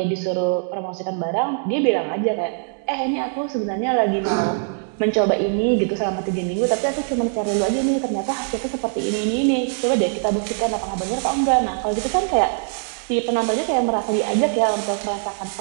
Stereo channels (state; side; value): silent; left; 64 dB below the other